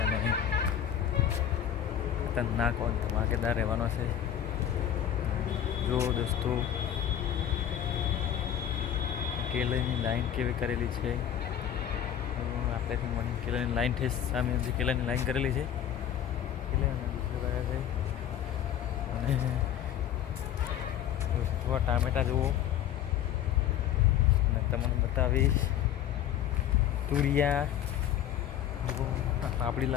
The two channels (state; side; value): quieter; right; 10.2 dB